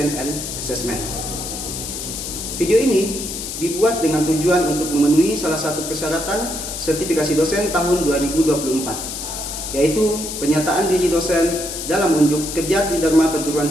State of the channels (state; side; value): noise; left; hiss, 6 dB below the sound